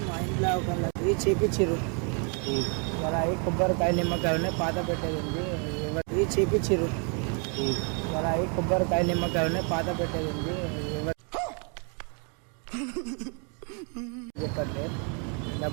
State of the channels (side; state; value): left; quieter; 38.5 dB